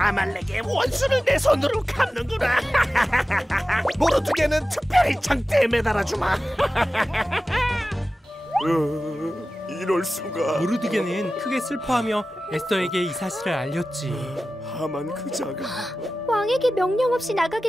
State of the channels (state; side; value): normal; both; correlation 0.95